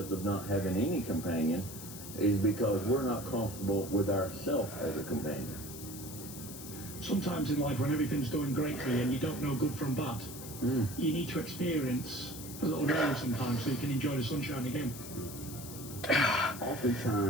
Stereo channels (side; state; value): left; noise; hiss, 12 dB below the sound